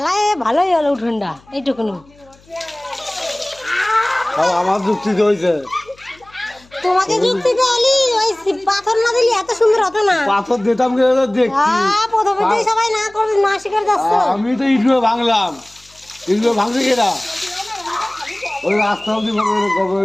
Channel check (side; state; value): left; noise; hum, 29 dB below the sound